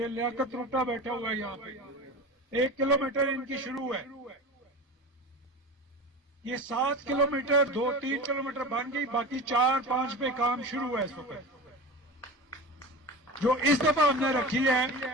लियाकत रोटा बैठा हुआ है यहाँ पे, 1 किलोमीटर इनकी शुरू है। ये 7 किलोमीटर 2-3 किलोमीटर बन गई, बाकी 4-5 पे काम शुरू है इस वक्त। जो इस दफा हमने रखी है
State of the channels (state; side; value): normal; both; correlation 0.31